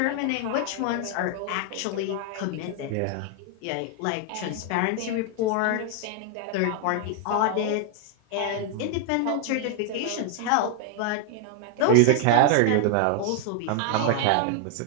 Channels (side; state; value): both; different; correlation 0.00